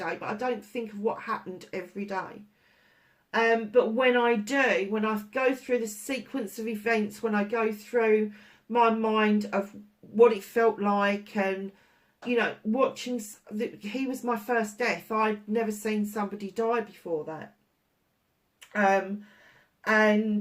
but I don't think of what happened every day. But when I do, when I go through the sequence of events, when I go through my mind of what it felt like, and, you know, watching, he was my first death. I'd never seen somebody die before that.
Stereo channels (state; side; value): identical; both; correlation 1.00